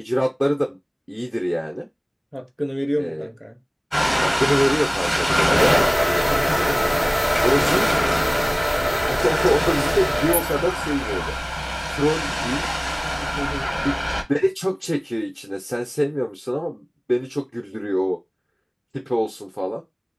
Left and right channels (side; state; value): both; identical; correlation 1.00